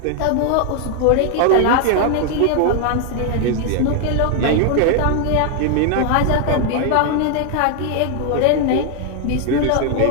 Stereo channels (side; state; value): both; different; correlation 0.00